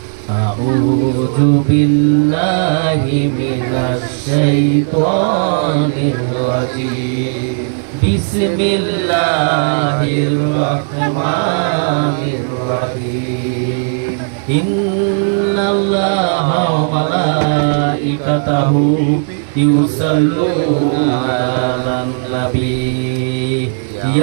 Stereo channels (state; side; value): silent; left; digital silence